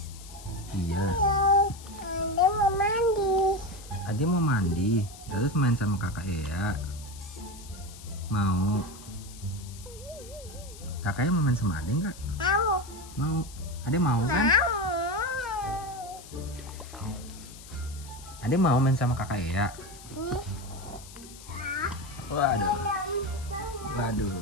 Iya. Halo, Ade mau mandi. Adik mau mandi. Terus main sama kakak Ea. Mau? Kakaknya mau main sama Adik nggak? Mau. Mau. Adik mau kan? Adik mau main sama kakak Ea. Waduh. Waduh.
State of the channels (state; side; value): noise; left; hiss, 18 dB below the sound